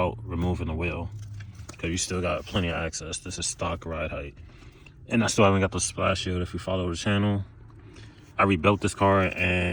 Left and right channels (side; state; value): both; identical; correlation 1.00